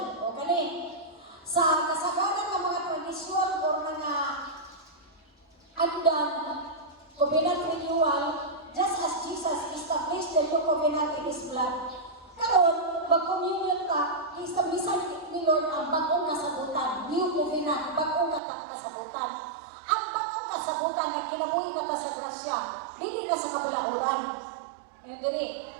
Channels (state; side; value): drops out; left; at 18.4 s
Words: O kani, sa kasagaran ng mga tradisyon o mga andan, covenant renewal, just as Jesus established the new covenant in His blood. Karon, mag-communion ka, establisan ni Lord ang bagong kasabutan, new covenant, bagong kasabutan. Ang bagong kasabutan na kinabuhi na ka sa grasya, hindi ka sa kabalauran.